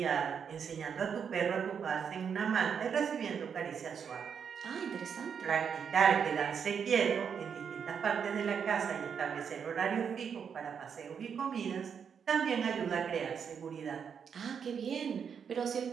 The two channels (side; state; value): left; quieter; 7.1 dB